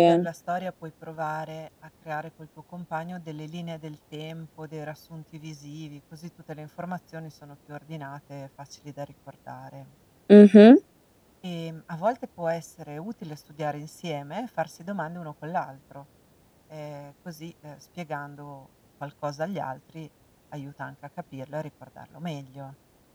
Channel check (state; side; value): identical; both; correlation 1.00